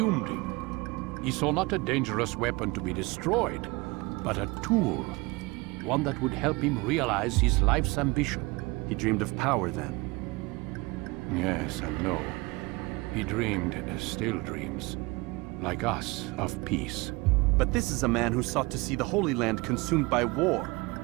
him. He saw not a dangerous weapon to be destroyed, but a tool. One that would help him realize his life's ambition. He dreamed of power then? Yes and no. He dreamed, still dreams, like us, of peace. But this is a man who sought to see the Holy Land consumed by war.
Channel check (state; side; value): quieter; left; 24.3 dB